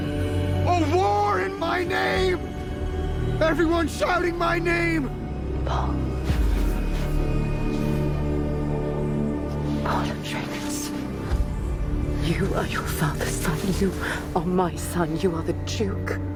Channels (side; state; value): both; identical; correlation 1.00